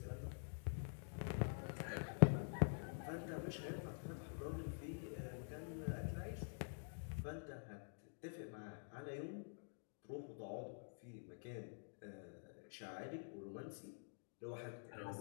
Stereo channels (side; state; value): right; silent; digital silence